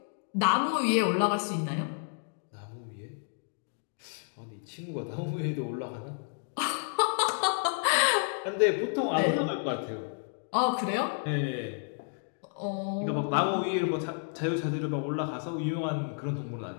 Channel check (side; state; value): right; silent; 57 dB below the other